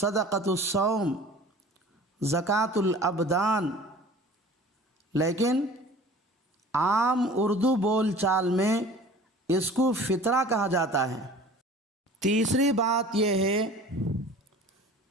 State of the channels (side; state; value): both; normal; correlation 0.44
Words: الصوم، زکوٰۃ الابدان، لیکن عام اردو بول چال میں اس کو فطرہ کہا جاتا ہے۔ تیسری بات یہ ہے